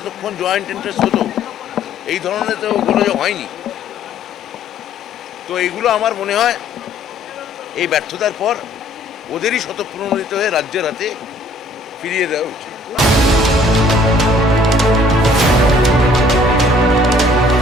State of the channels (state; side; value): normal; both; correlation 0.58